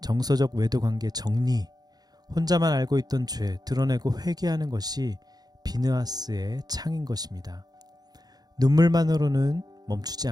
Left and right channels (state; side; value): late; left; 0.19 ms